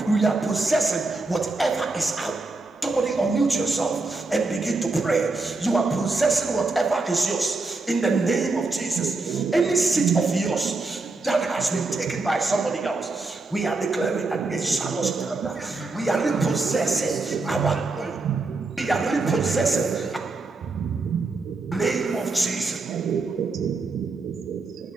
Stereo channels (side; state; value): left; quieter; 3.5 dB